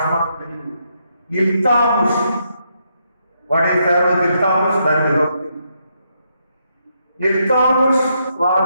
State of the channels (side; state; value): both; inverted; correlation -0.78